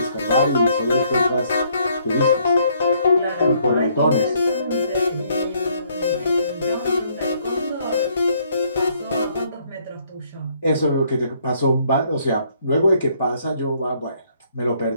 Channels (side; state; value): both; inverted; correlation -0.67